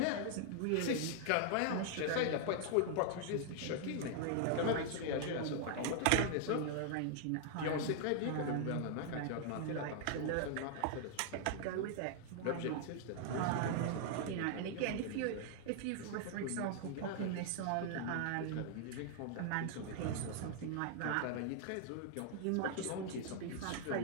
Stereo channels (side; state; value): both; different; correlation -0.01